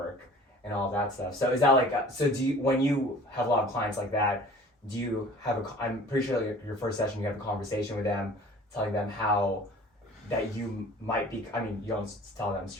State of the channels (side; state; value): both; normal; correlation 0.46